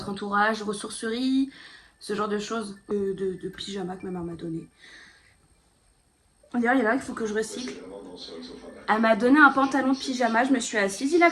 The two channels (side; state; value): both; identical; correlation 1.00